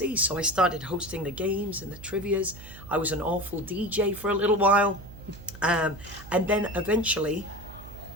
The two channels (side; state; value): right; noise; hum, 16 dB below the sound